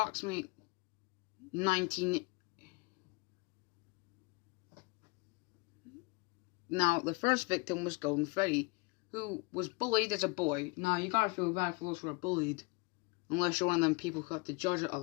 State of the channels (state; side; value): quieter; right; 28.0 dB